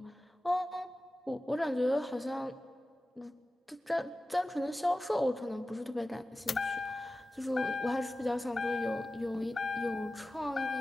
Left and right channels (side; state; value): both; normal; correlation 0.95